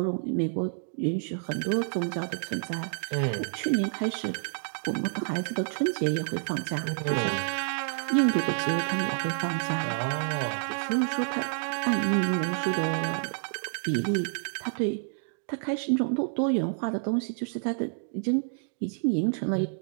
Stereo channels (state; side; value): silent; left; digital silence